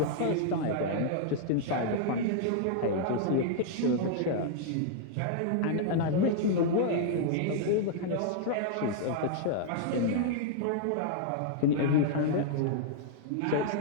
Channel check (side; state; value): both; different; correlation -0.01